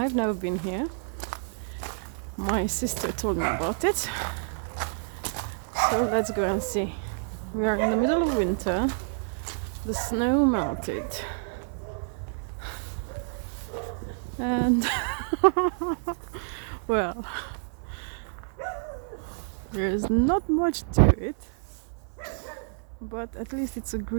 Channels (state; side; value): silent; left; 58 dB below the other